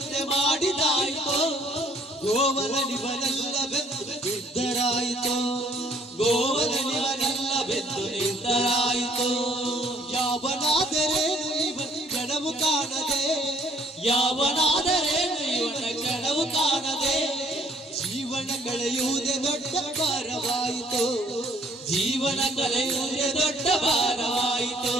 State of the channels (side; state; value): both; normal; correlation 0.61